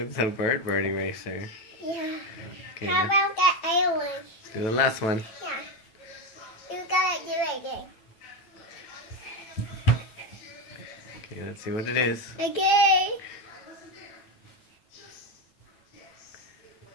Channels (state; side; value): late; right; 9.2 ms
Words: a bird eraser. Yeah. Okay, How now about that other one? let's do the last one. Yeah. You gotta do it again. Okay, let's see what it is. Okay.